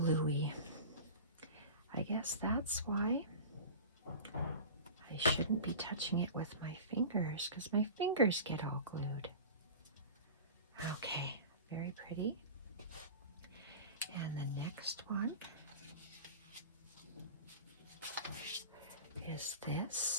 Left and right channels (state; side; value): inverted; both; correlation -0.33